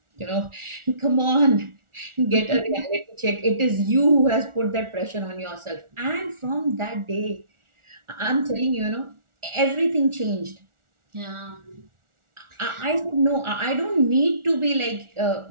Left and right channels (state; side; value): late; left; 1.4 ms